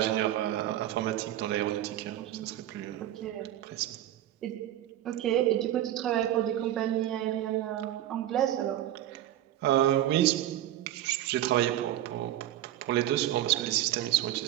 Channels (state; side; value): quieter; left; 12.8 dB